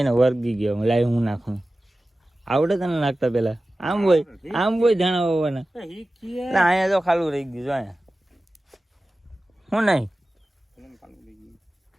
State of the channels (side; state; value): both; normal; correlation 0.96